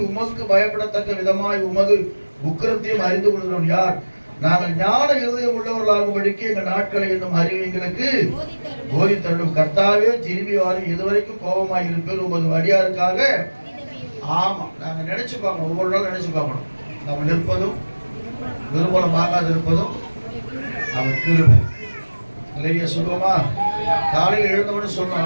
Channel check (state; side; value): inverted; both; correlation -1.00